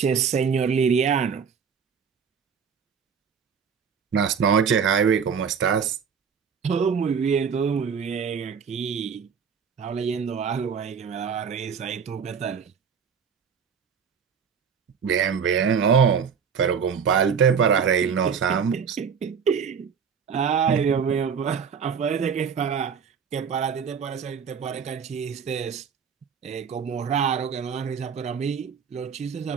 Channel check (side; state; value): left; quieter; 6.6 dB